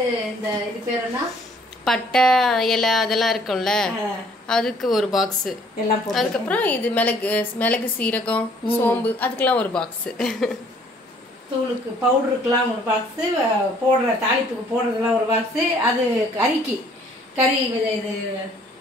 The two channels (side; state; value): both; normal; correlation 0.60